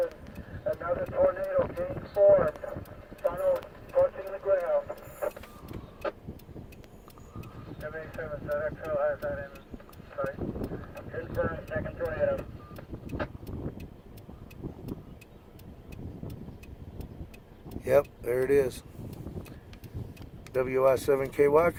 Another tornado getting formed. Funnel approaching the ground. 787 ZXL has that in sight. Confirmed, second tornado. Yep, there it is. WI7KY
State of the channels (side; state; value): both; identical; correlation 1.00